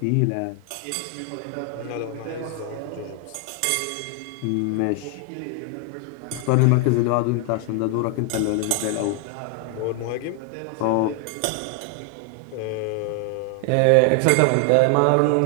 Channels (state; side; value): different; both; correlation 0.00